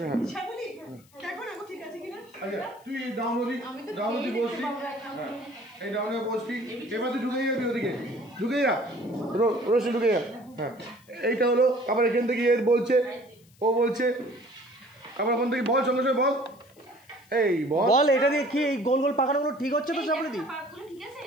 আচ্ছা তুই ডাউনলোডি বসবি, এই ডাউনে বসবি, এবার তুই ঢুকে যাবি ওদিকে, ঢুকে যা রোশনি ঢুকে যা। হ্যাঁ এইটা হলো আবার এখান থেকে এর বলছে, ও বলছে আবার ওখান থেকে বল সঙ্গে সঙ্গে বল, এই বল এটা দিয়ে কি এই গোল গোল পাকানোগুলো ঠিক হচ্ছে তো চাপড়ি?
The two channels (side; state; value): left; noise; hiss, 30 dB below the sound